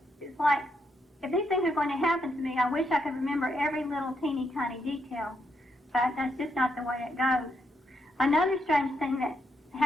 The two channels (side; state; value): both; normal; correlation 0.79